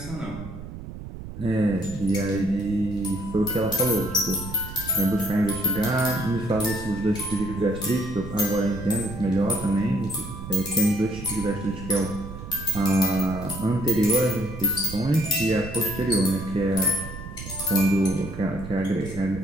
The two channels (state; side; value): noise; right; rumble, 11 dB below the sound